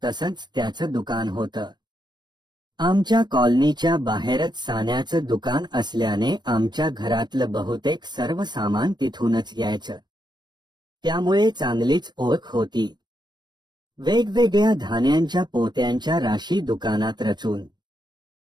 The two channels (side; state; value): left; late; 0.21 ms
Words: तसंच त्याचं दुकान होतं. आमच्या कॉलनीच्या बाहेरच सान्याचं दुकान असल्याने आमच्या घरातलं बहुतेक सर्व सामान तिथूनच यायचं. त्यामुळे चांगलीच ओळख होती. वेगवेगळ्या धान्यांच्या पोत्यांच्या राशी दुकानात रचून